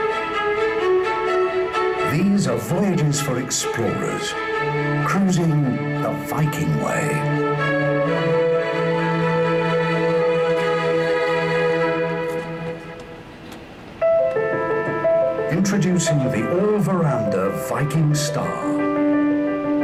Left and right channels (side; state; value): both; identical; correlation 1.00